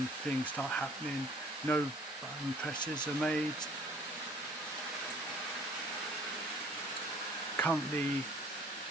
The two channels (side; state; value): both; normal; correlation 0.55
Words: things start happening. No button presses are made. Currently